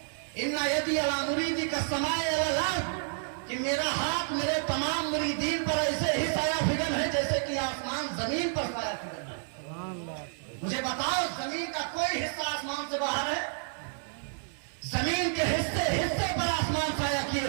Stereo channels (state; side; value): silent; left; digital silence